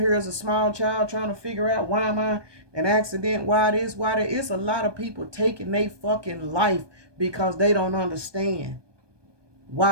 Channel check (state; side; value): late; left; 1.2 ms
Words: here as a small child trying to figure out, why am I an accident? Why this? Why that? It's a lot of people taking their fucking life because they don't understand